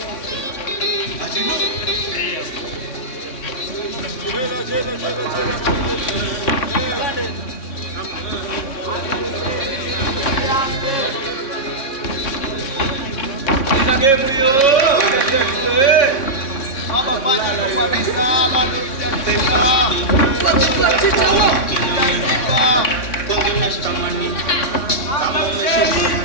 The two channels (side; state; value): right; late; 3.6 ms